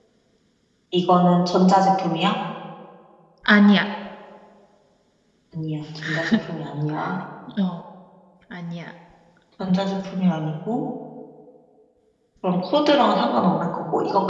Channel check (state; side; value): identical; both; correlation 1.00